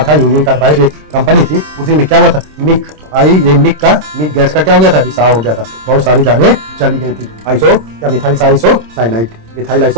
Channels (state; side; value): late; left; 26 ms